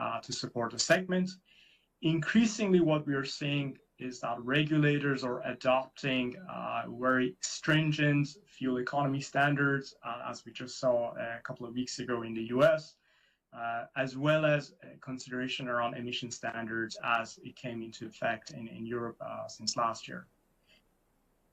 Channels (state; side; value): identical; both; correlation 1.00